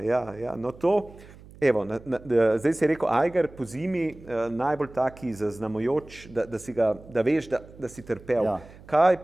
no to, evo, zdaj si rekel Eiger po zimi, najbolj taki zaznamujoč, da veš, da si trpel. Kaj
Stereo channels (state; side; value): noise; right; hum, 21 dB below the sound